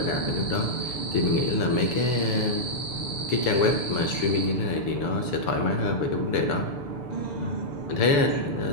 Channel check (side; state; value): right; late; 6.9 ms